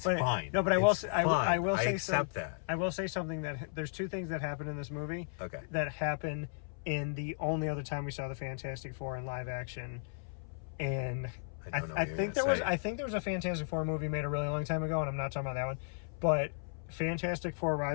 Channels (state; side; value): silent; right; 55 dB below the other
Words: fine. No, but I will say, I accept that. I will say something that there's 2 things that happen in this movie. Okay. That happen in the only other time we saw the Fantastic Four in live action. And I think there was a Fantastic Four movie made a really long time ago, and I'm not talking about that one. But Fantastic Four: